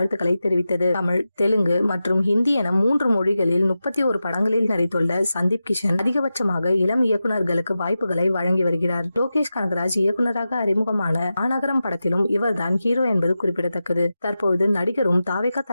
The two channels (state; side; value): inverted; both; correlation -0.92